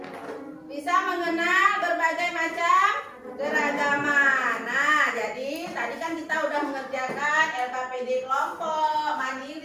Bisa mengenal berbagai macam keragaman. Nah, jadi tadi kan kita udah mengerjakan LKPD kelompok,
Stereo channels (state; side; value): identical; both; correlation 1.00